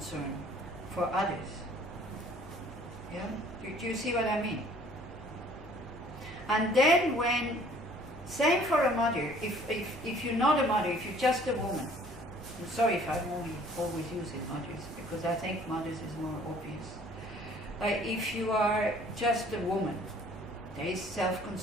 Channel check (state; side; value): normal; both; correlation 0.55